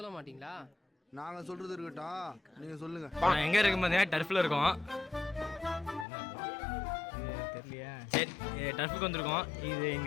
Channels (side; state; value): right; drops out; at 6.1 s